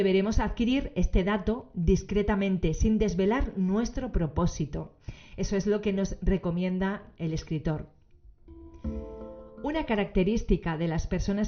adquirir este dato discretamente, sin desvelar nuestro propósito. Eso es lo que nos recomienda el escritor. Una característica de las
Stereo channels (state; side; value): identical; both; correlation 1.00